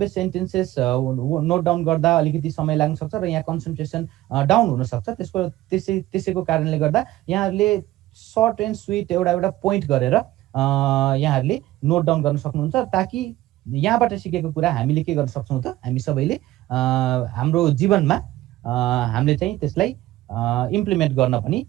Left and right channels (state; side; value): quieter; left; 16.0 dB